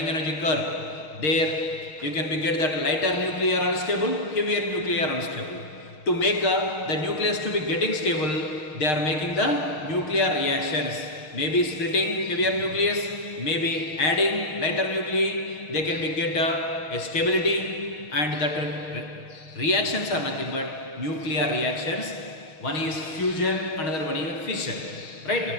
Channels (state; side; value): late; right; 6.5 ms